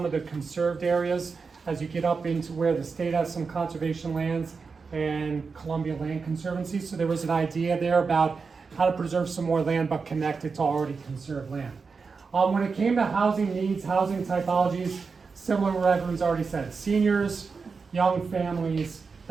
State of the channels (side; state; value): left; quieter; 4.9 dB